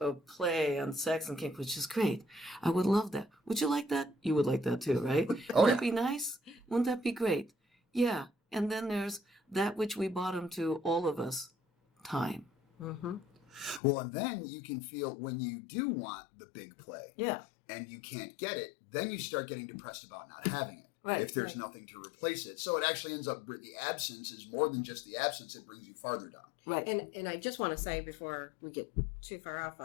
play and sex and kink, which is great. I would love that. Would you like that? You would like that too, right? Wouldn't that be nice? Wouldn't that be great? Yeah. And then there's that which we bottom to, all of us, time. Mm-hmm. Well, and then you can feel when you do want the big play. Yeah. And you can't get it, then you start getting depressed about not having it. Right. If there's nothing to replace it. So it actually ends up, the absence is more than just the absence, it brings you farther down. Right. And I just want to say before we get too far off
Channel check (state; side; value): drops out; right; at 13.8 s